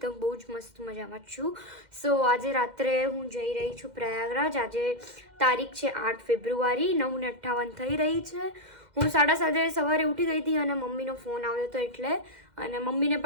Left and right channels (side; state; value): left; late; 2.1 ms